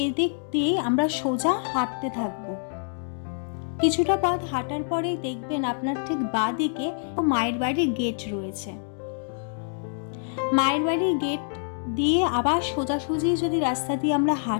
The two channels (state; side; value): silent; right; digital silence